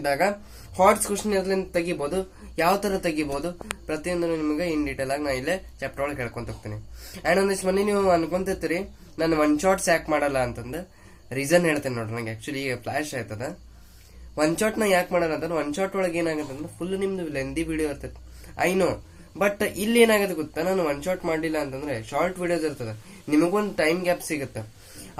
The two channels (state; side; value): identical; both; correlation 1.00